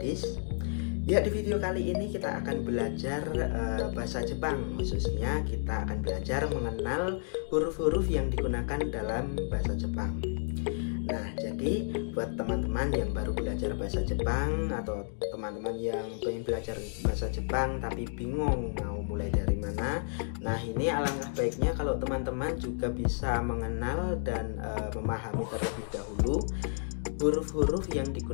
Ya, di video kali ini kita akan belajar bahasa Jepang. Khususnya kita akan belajar mengenal huruf-huruf yang digunakan dalam bahasa Jepang. Nah, jadi buat teman-teman yang baru belajar bahasa Jepang atau teman-teman yang pengen belajar bahasa Jepang tapi bingung mau mulai dari mana, nah ini alangkah baiknya kalau teman-teman juga bisa mengenal dan memahami terlebih dahulu huruf-huruf yang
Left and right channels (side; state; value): right; silent; digital silence